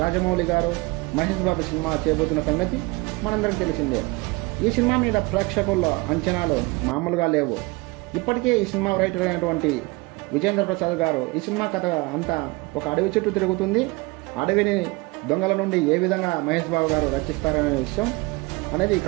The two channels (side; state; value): left; quieter; 24.8 dB